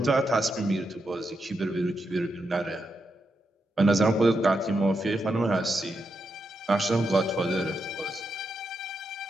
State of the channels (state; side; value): normal; both; correlation 0.84